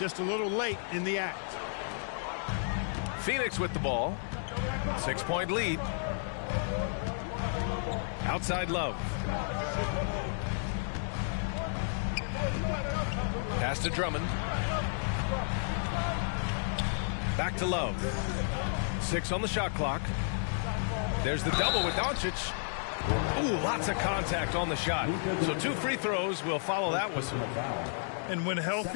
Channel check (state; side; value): silent; right; digital silence